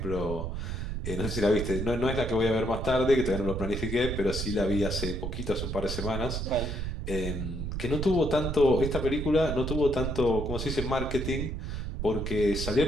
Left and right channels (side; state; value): right; noise; rumble, 4 dB below the sound